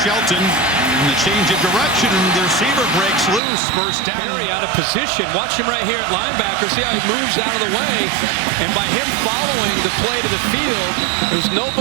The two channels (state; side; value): drops out; left; at 3.4 s